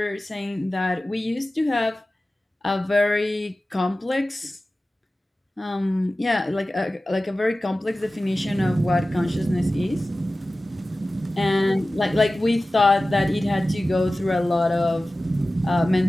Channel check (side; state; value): both; normal; correlation 0.96